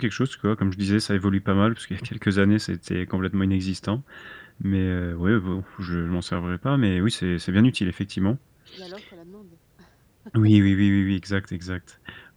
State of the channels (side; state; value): both; identical; correlation 1.00